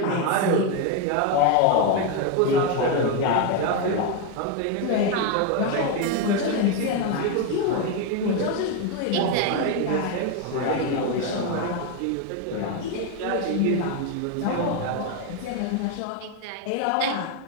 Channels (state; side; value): different; both; correlation 0.02